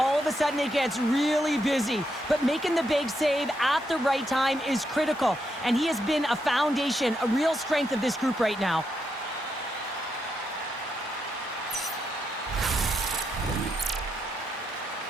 of a sudden it gets really busy. But making the big save at the right time is critical. And he has been a foundation, a real strength of this group right now.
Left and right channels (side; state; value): both; normal; correlation 0.81